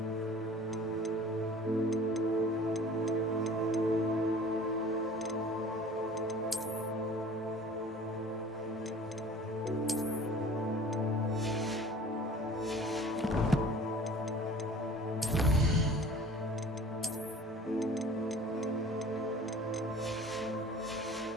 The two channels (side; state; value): both; normal; correlation 0.46